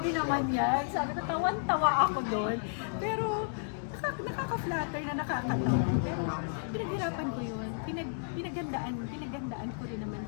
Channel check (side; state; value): right; silent; digital silence